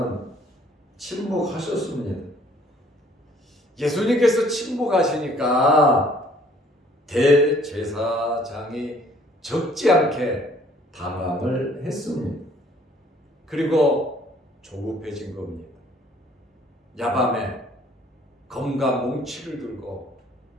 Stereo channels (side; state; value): both; normal; correlation 0.59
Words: 침묵하셨습니다. 예수님께서 침묵하시니까 대제사장이 적지 않게 당황을 했습니다. 그리고 조급해진 겁니다. 야밤에 검과 몽치를 들고